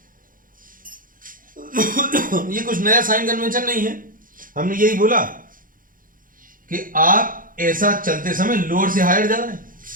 ये कुछ नया साइन कन्वेंशन नहीं है, हमने यही बोला कि आप ऐसा चलते समय लोअर से हायर जा रहे हैं।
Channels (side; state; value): left; late; 0.40 ms